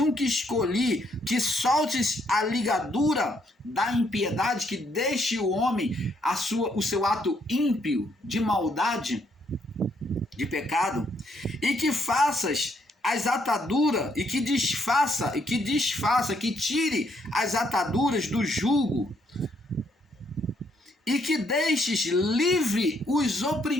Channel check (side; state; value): both; normal; correlation 0.72